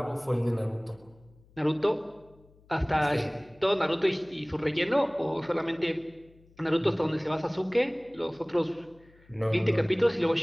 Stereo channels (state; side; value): noise; left; hum, 28 dB below the sound